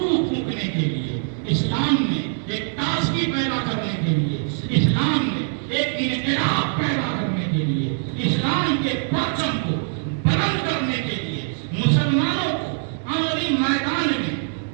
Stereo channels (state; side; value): silent; left; digital silence